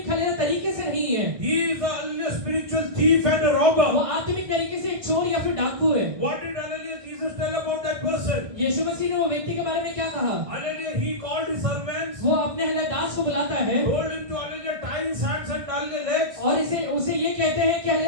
हालेलुया तरीके से नहीं है, he is a hallelujah spiritual thief and a robber. वो आत्मिक तरीके से एक चोर या फिर डाकू है। What did hallelujah Jesus tell about that person? यीशु मसीह ने वो व्यक्ति के बारे में क्या कहा? Hallelujah he called his servants, वो अपने हालेलुया दास को बुलाता है told him to hallelujah tie his hands and hallelujah legs और उसे ये कहते हैं कि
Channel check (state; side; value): late; left; 1.6 ms